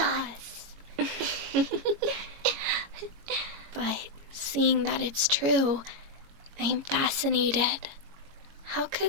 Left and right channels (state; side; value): late; left; 21 ms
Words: But seeing that it's true, I'm fascinated. How